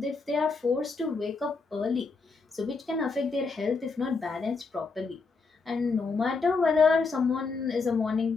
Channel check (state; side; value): quieter; right; 4.4 dB